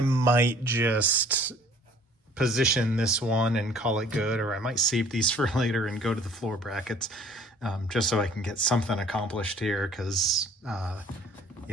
might just position this one and call it good, or I might save these for later and go to the floor brackets, just so I can get something accomplished here, because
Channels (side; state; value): both; normal; correlation 0.54